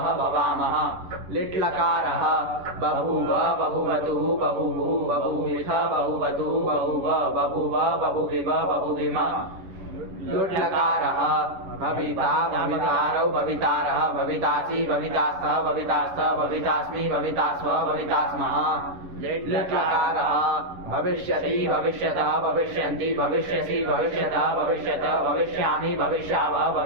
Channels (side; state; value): left; late; 11 ms